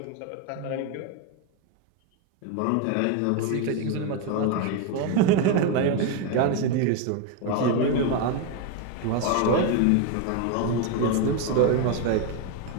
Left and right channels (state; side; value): different; both; correlation 0.02